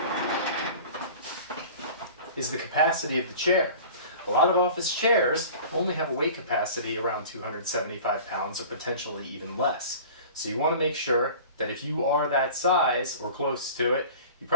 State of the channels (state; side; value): inverted; both; correlation -0.41